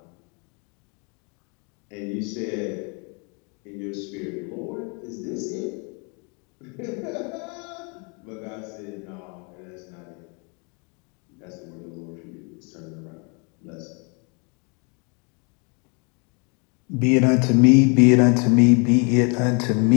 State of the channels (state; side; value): quieter; right; 34.3 dB